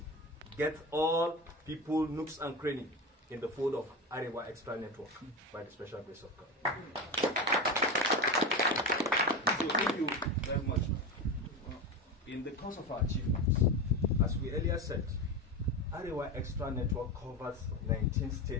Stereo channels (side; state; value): both; normal; correlation 0.21